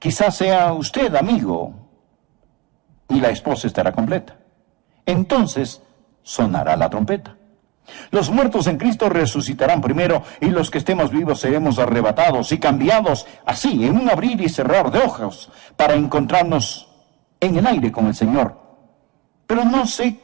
sea usted, amigo, y la esposa estará completa. Entonces sonará la trompeta. Los muertos en Cristo resucitarán primero y los que estemos vivos seremos arrebatados y cambiados así en un abrir y cerrar de ojos para encontrarnos en el aire con el Señor. Pero no sé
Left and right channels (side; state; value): left; quieter; 23.4 dB